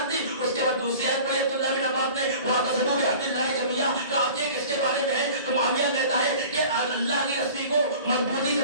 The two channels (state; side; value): inverted; both; correlation -0.42